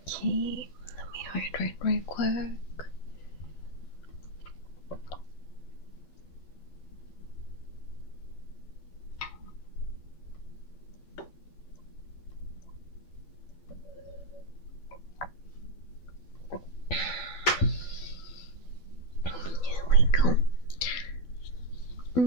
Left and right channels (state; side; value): late; right; 12 ms